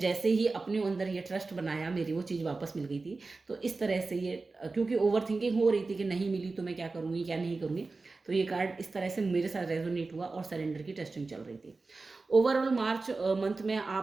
ही अपने अंदर ये ट्रस्ट बनाया, मेरी वो चीज़ वापस मिल गई थी। तो इस तरह से ये क्योंकि ओवर थिंकिंग हो रही थी कि नहीं मिली तो मैं क्या करूँगी क्या नहीं करूँगी, तो ये कार्ड इस तरह से मेरे साथ रेजोनेट हुआ और सरेंडर की टेस्टिंग चल रही थी। ओवरऑल मार्च मंथ में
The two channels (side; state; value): left; quieter; 3.8 dB